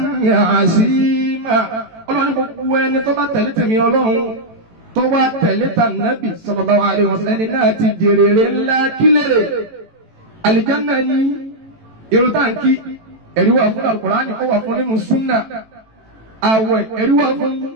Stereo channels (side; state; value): left; late; 18 ms